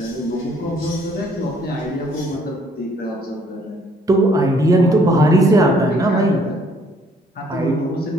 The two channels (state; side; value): normal; both; correlation 0.63